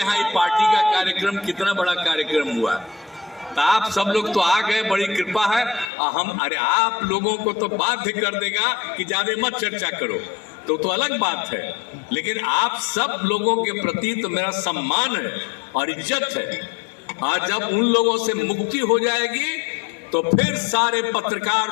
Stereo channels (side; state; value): right; drops out; at 5.9 s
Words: पार्टी का कार्यक्रम कितना बड़ा कार्यक्रम हुआ। तो आप सब लोग तो आ गए, बड़ी कृपा है। हम अरे आप लोगों को तो बाध्य कर देगा कि ज्यादा मत चर्चा करो, तो अलग बात है, लेकिन आप सब लोगों के प्रति तो मेरा सम्मान है और इज्जत है। और जब उन लोगों से मुक्ति हो जाएगी तो फिर सारे पत्रकार